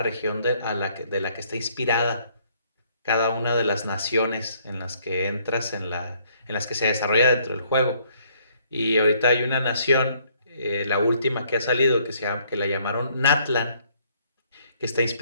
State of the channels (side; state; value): both; inverted; correlation -0.65